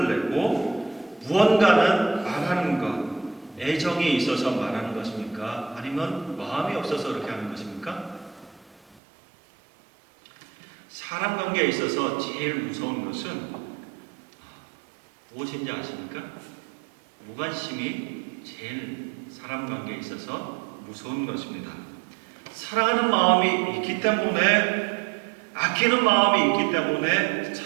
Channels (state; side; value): drops out; left; at 9.0 s